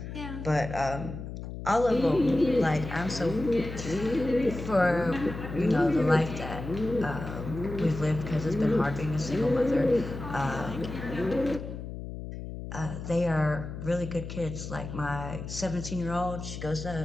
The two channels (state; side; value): noise; left; hum, 9 dB below the sound